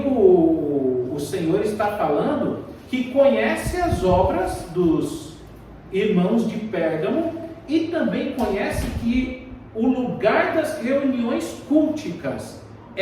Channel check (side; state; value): both; identical; correlation 1.00